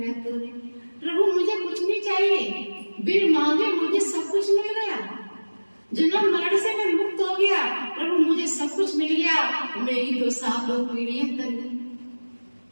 तोरे। प्रभु मुझे कुछ नहीं चाहिए, बिन मांगे मुझे सब कुछ मिल गया, जन्म मरण से मैं मुक्त हो गया। प्रभु मुझे सब कुछ मिल गया, मेरी तो 7 पीढ़ियां तर गई।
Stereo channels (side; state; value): both; inverted; correlation -1.00